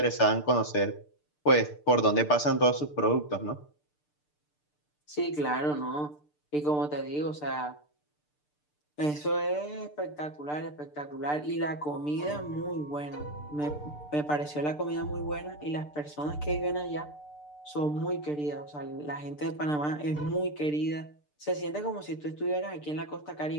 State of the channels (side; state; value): right; late; 6.7 ms